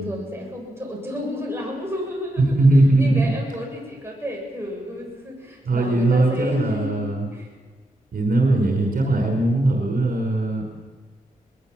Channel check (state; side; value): normal; both; correlation 0.84